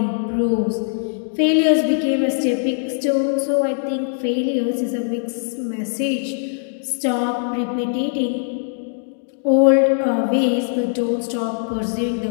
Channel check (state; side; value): silent; right; digital silence